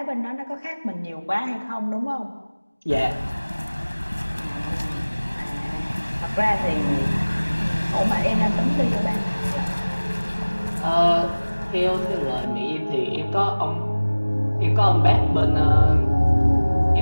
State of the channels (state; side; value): inverted; both; correlation -1.00